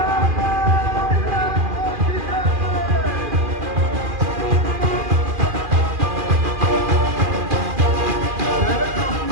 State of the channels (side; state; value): left; late; 2.4 ms